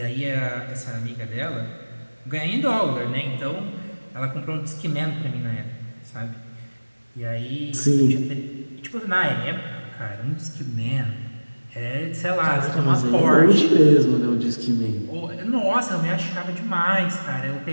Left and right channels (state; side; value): inverted; both; correlation -1.00